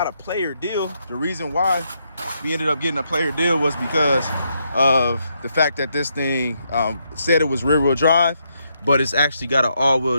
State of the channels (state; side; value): inverted; both; correlation -0.78